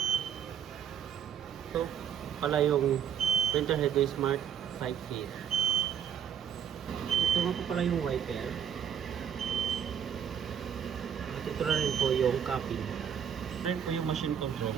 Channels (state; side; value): quieter; left; 8.4 dB